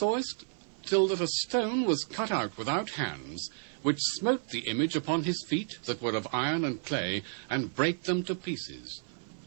till that a stone was cut out without hands, which smote the image upon his feet that were of iron and clay, and brake them to pieces.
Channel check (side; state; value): left; silent; 57 dB below the other